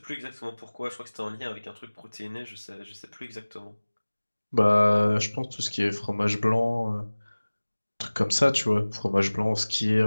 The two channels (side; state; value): both; inverted; correlation -1.00